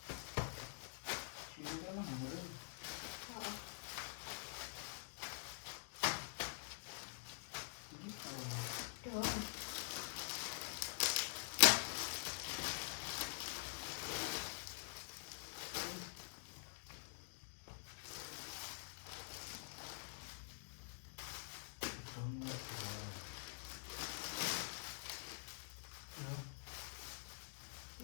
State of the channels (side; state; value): right; silent; digital silence